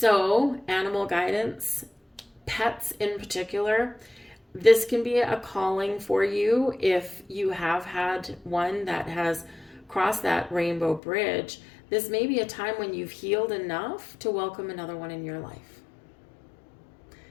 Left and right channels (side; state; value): right; drops out; at 11.0 s